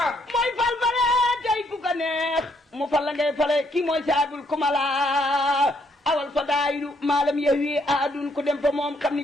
mu fal la ngay fale kii mooy saabul kumala awal fadaayilu maalam yahwi aadun ku dem fa moom xam ni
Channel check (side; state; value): both; normal; correlation 0.71